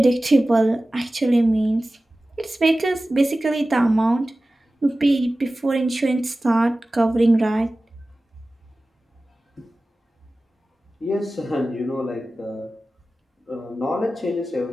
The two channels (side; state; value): both; normal; correlation 0.96